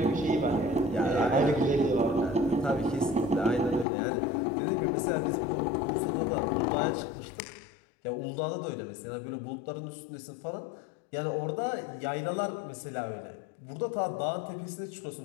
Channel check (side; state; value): right; drops out; at 3.9 s